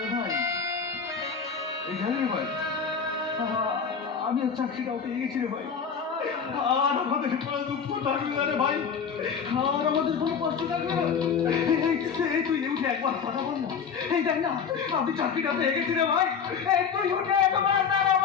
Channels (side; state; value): right; quieter; 6.4 dB